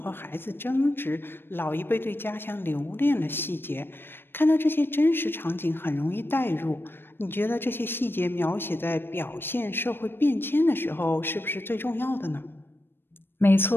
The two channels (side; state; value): right; late; 0.10 ms